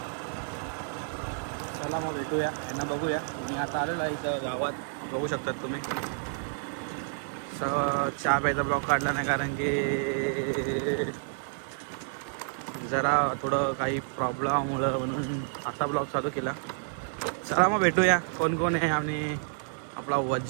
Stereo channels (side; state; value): left; silent; digital silence